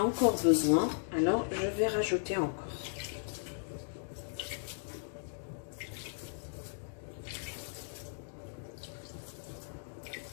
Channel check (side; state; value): right; silent; digital silence